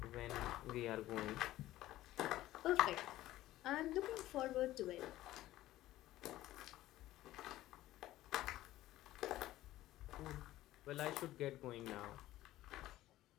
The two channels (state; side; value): quieter; right; 15.3 dB